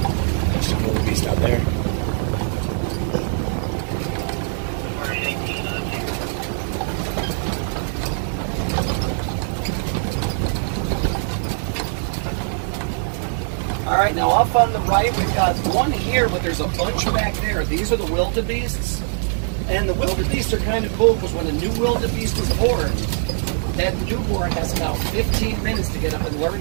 There's some little beast out there. All right, now off on the right, we've got one here, but there's a bunch back there. These are the wildebeests. And the wildebeest are kind of cool because when a new wildebeest is born, that newborn has about 15 minutes to get up and learn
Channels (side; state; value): left; silent; 59 dB below the other